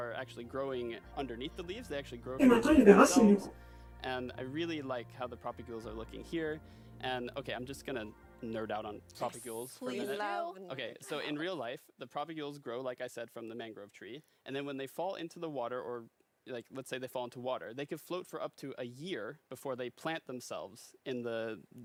actually growing underneath the leaves. They actually grow Et from maintenant, il y a the des leaves racines, du themselves. And I really like how the propagules are looking here. And okay, I'm just gonna nerd out on propagules for a Please minute. love. Okay, so in real life, the propagules grow, like I said, from the mangrove tree. And then when they fall into the water, or like let's say they fall into water, they could float for up to a year before they plant themselves in the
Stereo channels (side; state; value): both; identical; correlation 1.00